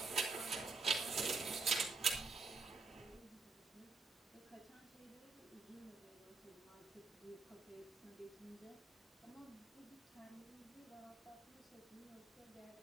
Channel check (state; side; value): quieter; left; 4.0 dB